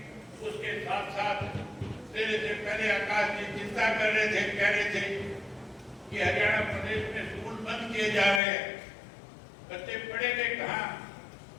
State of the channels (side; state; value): right; drops out; at 8.4 s